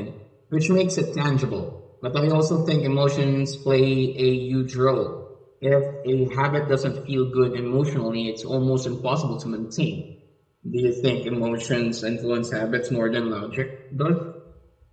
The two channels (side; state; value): both; identical; correlation 1.00